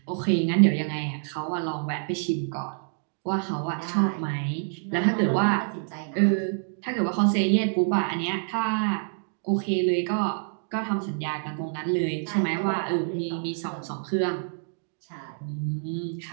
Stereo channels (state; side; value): silent; left; digital silence